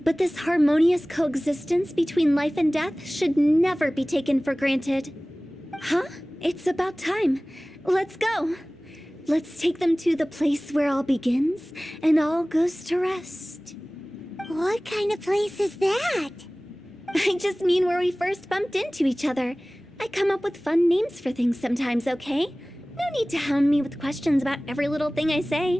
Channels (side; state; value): both; normal; correlation 0.98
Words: but this harmonious coexistence between life and death should never be taken for granted. Huh? It's about time. Let's go. Let's take them to the place where all begins and all goes to rest. What kind of place is that? I just mean where we first bumped into each other. I come up with fun names for things sometimes, okay? No need to hound me with questions about every little thing I